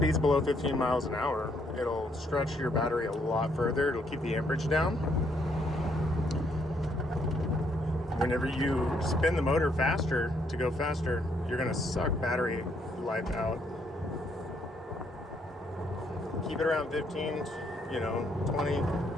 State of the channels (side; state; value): both; normal; correlation 0.71